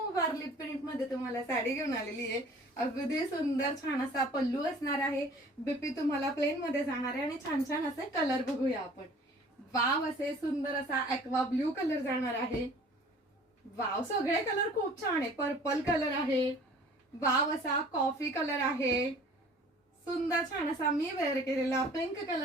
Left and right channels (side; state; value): both; normal; correlation 0.49